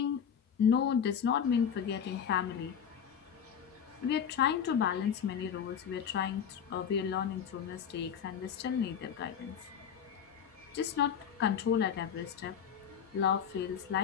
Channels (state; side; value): quieter; right; 7.9 dB